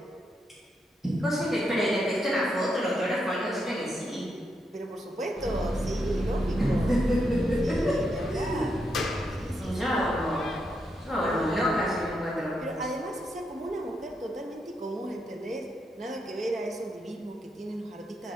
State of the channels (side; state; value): both; normal; correlation 0.81